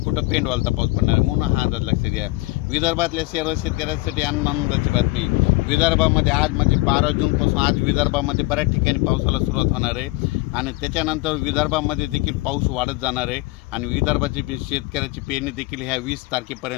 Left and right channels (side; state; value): right; quieter; 21.6 dB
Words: पेंडवालता पाऊस पडणार आहे, म्हणून हा अंदाज लक्षात घ्या। विदर्भातल्या सर्व शेतकऱ्यांसाठी आनंदाची बातमी, विदर्भामध्ये आज म्हणजे 12 जूनपासून आज विदर्भामध्ये बऱ्याच ठिकाणी पावसाला सुरुवात होणार आहे आणि त्याच्यानंतर विदर्भामध्ये देखील पाऊस वाढत जाणार आहे आणि विदर्भाची शेतकऱ्याची पेरणी देखील ह्या 20